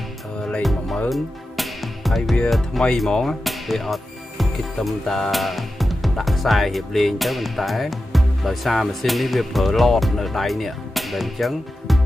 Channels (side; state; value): both; normal; correlation 0.92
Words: លេខ 10000 ហើយវាថ្មីហ្មងវាអត់គិតត្រឹមតាដាក់ខ្សែរៀបលេងទៅប៉ុន្តែដោយសារម៉ាស៊ីននេះវាប្រើឡតនៅដៃនេះតែអញ្ចឹង